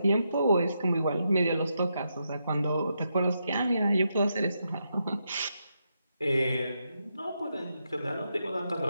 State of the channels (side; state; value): both; inverted; correlation -0.83